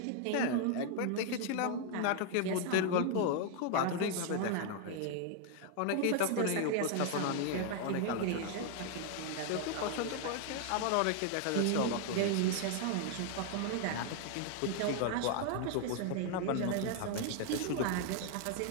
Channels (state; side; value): different; both; correlation 0.00